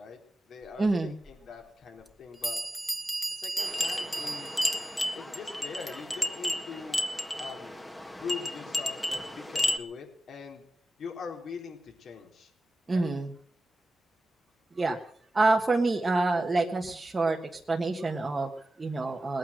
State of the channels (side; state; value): both; normal; correlation 0.93